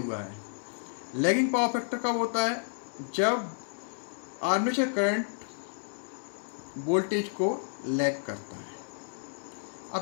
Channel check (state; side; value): silent; right; digital silence